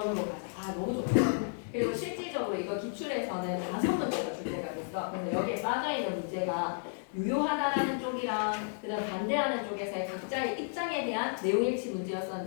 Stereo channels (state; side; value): silent; right; digital silence